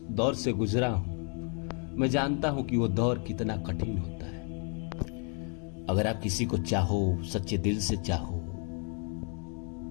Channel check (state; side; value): quieter; right; 40.0 dB